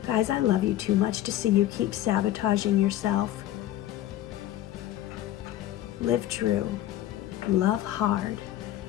Guys, I love you too much to see you keep sabotaging yourself. Live true, love hard,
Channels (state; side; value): quieter; right; 13.5 dB